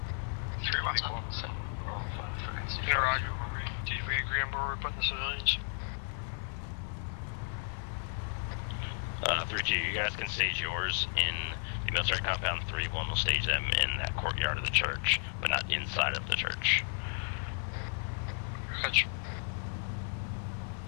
Mike 1, 7, roll 5, frequency 50. Right. Did we agree on where we're putting the civilians? 3-2, you guys can stage yours in the military compound. 3-1 will stage them in that courtyard of the church, but not inside of the church. Gotcha.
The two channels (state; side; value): silent; right; 55 dB below the other